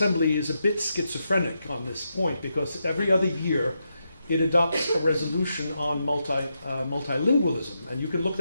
is a bit schizophrenic on this point, because every other year it adopts a resolution on multilingualism. And you can look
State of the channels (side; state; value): both; inverted; correlation -0.84